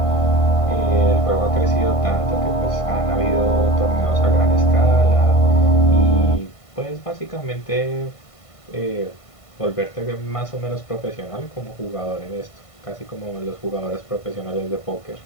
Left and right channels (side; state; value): right; late; 1.5 ms